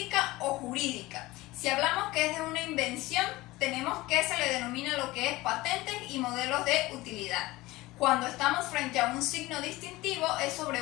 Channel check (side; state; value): right; quieter; 19.6 dB